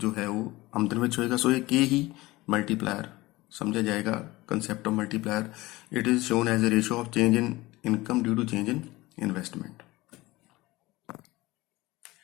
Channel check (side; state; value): right; quieter; 19.8 dB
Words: ਹੈ ਉਹ ਆਮਦਨ ਵਿੱਚ ਹੋਏਗਾ. ਸੋ ਇਹ k ਹੀ multiplier समझा जाएगा concept of multiplier. It is shown as a ratio of change in income due to change in investment.